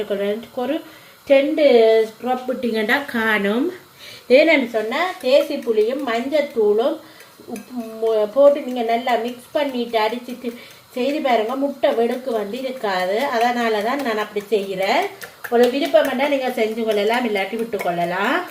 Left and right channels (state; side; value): identical; both; correlation 1.00